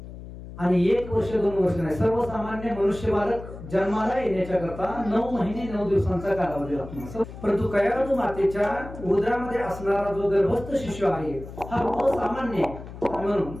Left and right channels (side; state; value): left; noise; hum, 13 dB below the sound